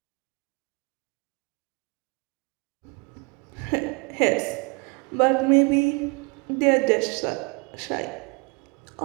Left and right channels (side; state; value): left; quieter; 30.1 dB